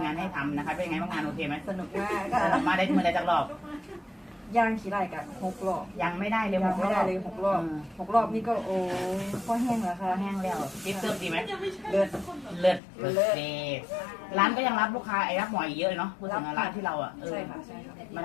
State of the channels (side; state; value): right; drops out; at 12.8 s